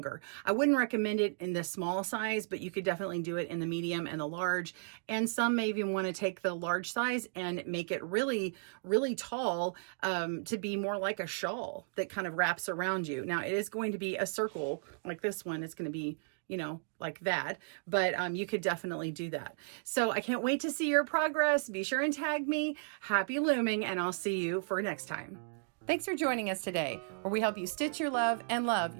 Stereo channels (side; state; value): left; silent; digital silence